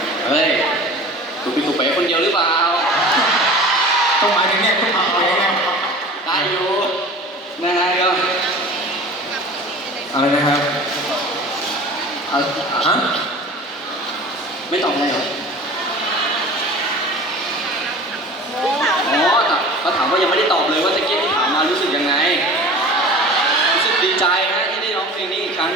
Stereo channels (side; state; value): both; normal; correlation 0.39